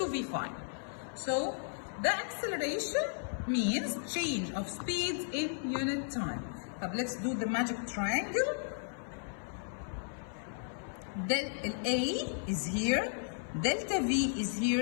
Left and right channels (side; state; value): right; silent; 55 dB below the other